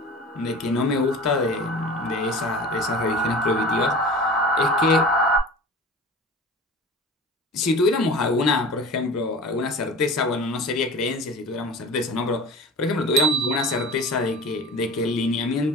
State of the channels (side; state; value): both; normal; correlation 0.38